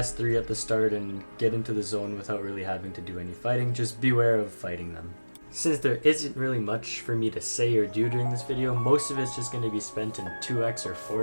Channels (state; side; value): inverted; both; correlation -1.00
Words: 3 at the start and get into the zone without really having to do any fighting. Just beware of fighting them. Since there isn't really much for me to say or do during this video, most of it's just going to be spent in 2x or